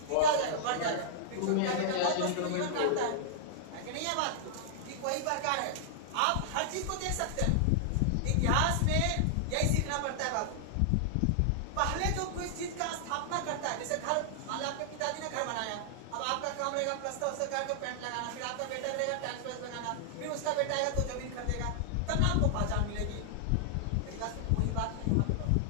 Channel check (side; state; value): both; different; correlation -0.01